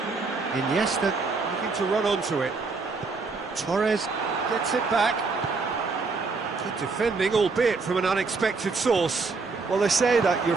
Iniesta looking to run onto it. Torres gets it back. Good defending, albeit from an unexpected source. Well, they say that your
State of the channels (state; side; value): quieter; left; 4.2 dB